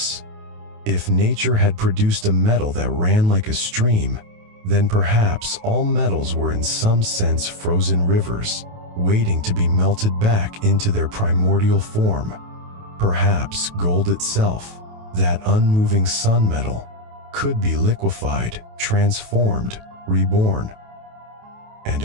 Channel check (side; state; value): left; late; 28 ms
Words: If nature had produced a metal that ran like a stream, then perhaps all metals were in some sense frozen rivers, waiting to be melted back into their primordial form. Perhaps gold itself, that unmoving sun metal, could be liquefied, transformed, reborn. And